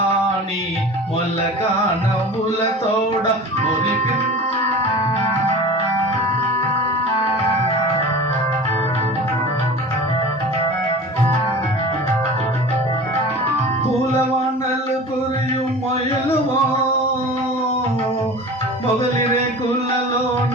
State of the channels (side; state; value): both; normal; correlation 0.37